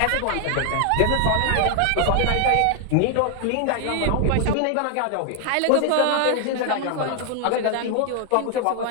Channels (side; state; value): both; different; correlation 0.00